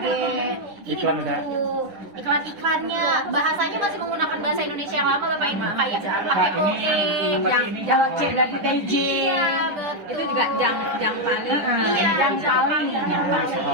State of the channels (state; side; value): late; left; 10 ms